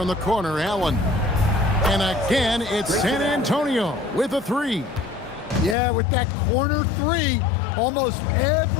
the corner, Allen. And again, it's San Antonio with a 3. Yeah, with that corner 3, Almost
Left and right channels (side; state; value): right; drops out; at 5.8 s